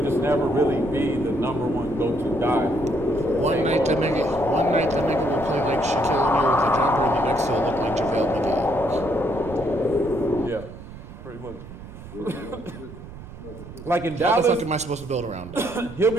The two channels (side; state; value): right; noise; rumble, 15 dB below the sound